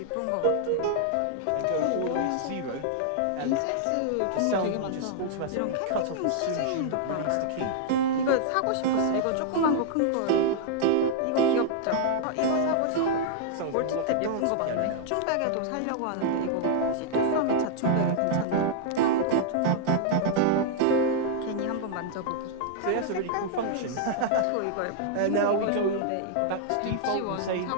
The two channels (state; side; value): different; both; correlation -0.01